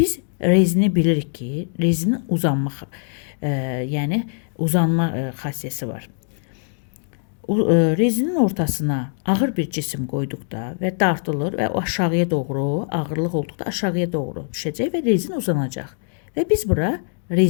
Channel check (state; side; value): silent; right; digital silence